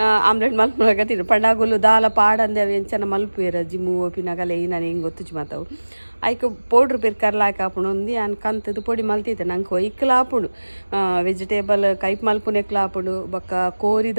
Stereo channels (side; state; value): both; inverted; correlation -1.00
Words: ಆಮ್ಲೆಟ್ ಮಲ್ಪಗತ್ತೀನಿ ಪಂಡಾಗುಲು ದಾಲ ಪಾಡಂದೆ ಅವು ಎಂಚನ ಮಲ್ಪೇರು ಜಿಮ್ಮು ಓಪಿನಾಗಲ್ಲ ನಾನು ಹಿಂಗೆ ಗೊತ್ತುಜಿ ಮಾತಾವು ಐಕ ಪೌಡ್ರ್ ಪೇರು ಕರ್ಲಾಕ ಹಾಪುಣು ಒಂದು ಅನ್ ಕಂತದು ಪೊಡಿ ಮಲ್ತಿದ್ದೆ ನಂಗೆ ಒಯ್ಕಲ ಹಾಪುಣು ವೆಜಿಟೇಬಲ್ ಕೈಪ್ ಮಲ್ಪುನೆಕ್ಲ ಹಾಪುಣು ಬೊಕ್ಕ